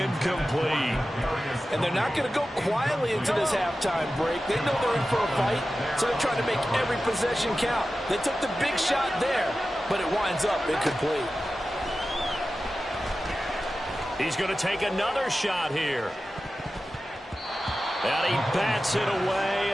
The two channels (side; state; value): both; normal; correlation 0.94